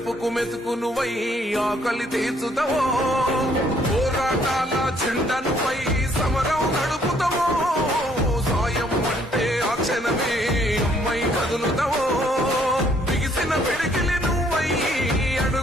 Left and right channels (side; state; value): both; normal; correlation 0.65